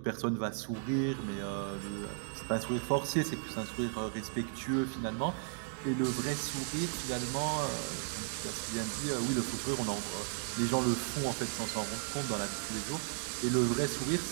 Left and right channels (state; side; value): silent; left; digital silence